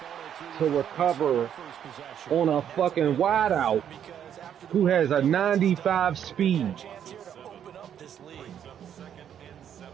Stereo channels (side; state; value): left; quieter; 9.3 dB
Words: to recover on a fucking wideout who has a 95 speed. Open up this lead. Brings up second and